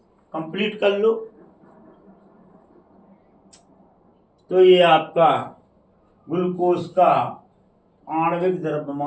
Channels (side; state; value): both; identical; correlation 1.00